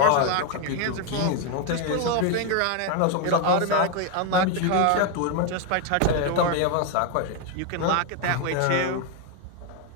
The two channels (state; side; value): different; both; correlation 0.01